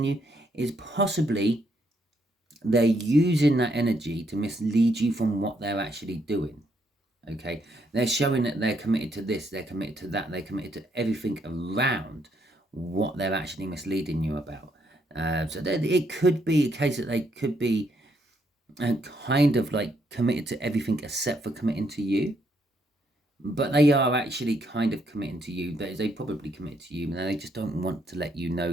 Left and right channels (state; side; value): normal; both; correlation 0.74